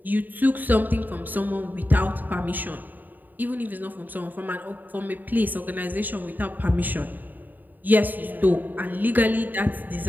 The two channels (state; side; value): late; left; 0.087 ms